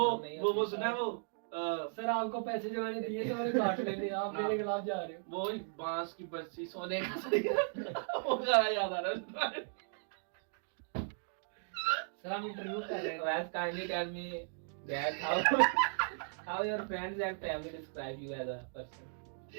नहीं वो होती। सुना है वो सर आपको पैसे जो मैंने दिए थे मैंने काट लेने, आप मेरे खिलाफ जा रहे हो। वो बांस की बरसी सोने का सरिया वो गाना याद आ रहा है। सर हम इंटरव्यू कर रहे हैं। Wes, kindly tell me that how your friends and family describe you as a person.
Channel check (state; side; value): silent; left; digital silence